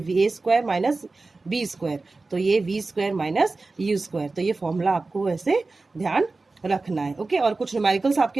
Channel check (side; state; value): left; quieter; 3.6 dB